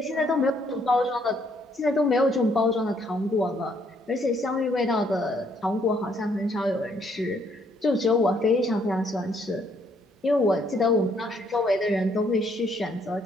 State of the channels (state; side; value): normal; both; correlation 0.69